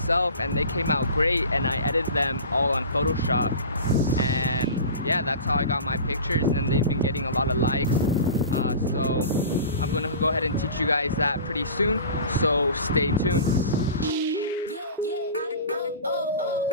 and they came out great, and I edited them all on Photoshop. And yeah, that's how I got my pictures, and they've been getting a lot of likes. So I'm gonna go ahead and teach you guys that pretty soon, so stay tuned.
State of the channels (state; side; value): inverted; both; correlation -0.37